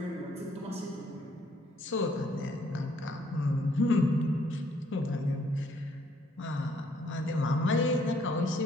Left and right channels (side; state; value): both; normal; correlation 0.66